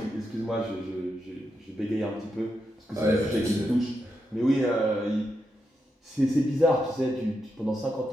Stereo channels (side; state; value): both; normal; correlation 0.85